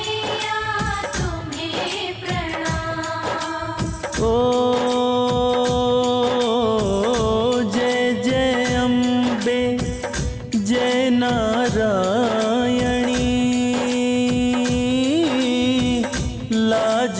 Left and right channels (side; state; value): both; identical; correlation 1.00